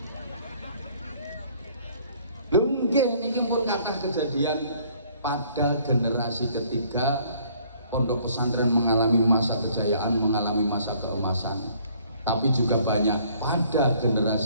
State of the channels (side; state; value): both; inverted; correlation -0.60